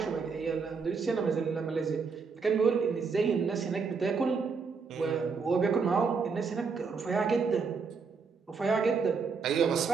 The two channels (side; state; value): left; quieter; 5.1 dB